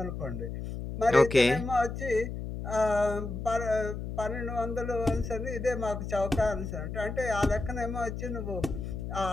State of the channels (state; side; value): noise; left; hum, 6 dB below the sound